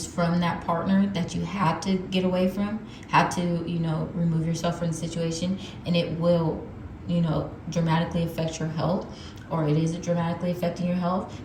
from that partner that you had to get away from, had to, remove yourself from the situation, and it will, dramatically affect your health, or it is dramatically affecting your health.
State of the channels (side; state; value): both; identical; correlation 1.00